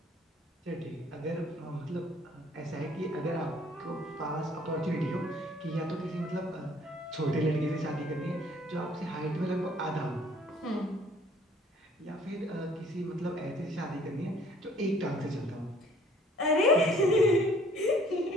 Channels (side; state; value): both; normal; correlation 0.57